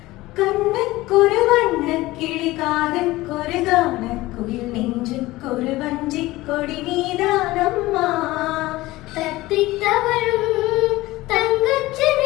കണ്ണക്കൊരു വണ്ണക്കിളി കാതക്കൊരു ഗാനക്കുയിൽ നെഞ്ചുക്കൊരു വഞ്ചിക്കൊടി നീതാനമ്മ തത്തിത്തവളും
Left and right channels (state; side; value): quieter; right; 18.6 dB